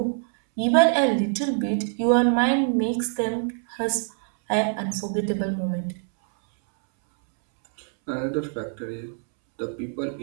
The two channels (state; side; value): silent; left; 62 dB below the other